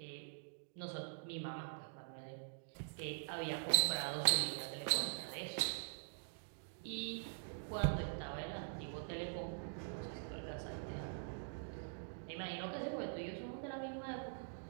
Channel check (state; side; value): silent; left; digital silence